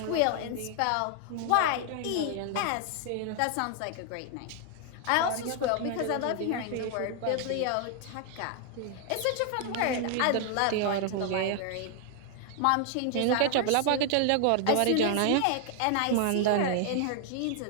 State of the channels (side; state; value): both; different; correlation 0.00